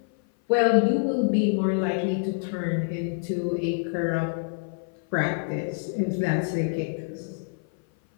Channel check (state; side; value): silent; right; 56 dB below the other